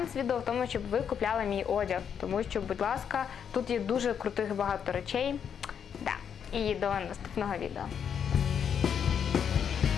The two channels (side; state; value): right; quieter; 7.8 dB